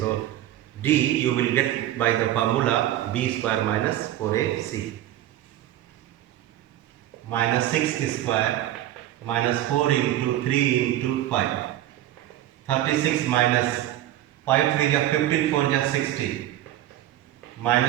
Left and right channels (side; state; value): left; quieter; 13.4 dB